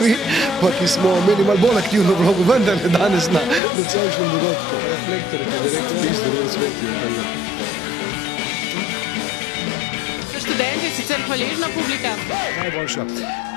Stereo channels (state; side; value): drops out; right; at 3.6 s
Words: vi, pa ki smo imeli malo bolj aktivno vlogo, vendar ne danes na nocojšnjem dogodku. Reflektor ti direkt spis, da bolj svetijo, tako da. Študent je sicer hvaležna publika? Najboljša.